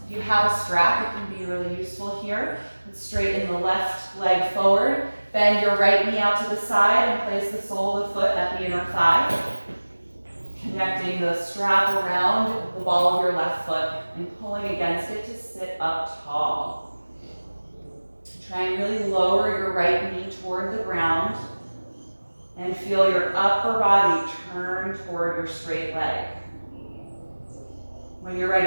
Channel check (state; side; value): inverted; both; correlation -1.00